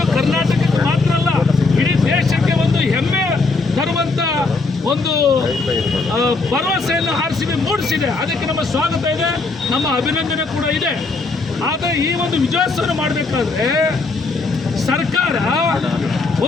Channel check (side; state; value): right; quieter; 3.7 dB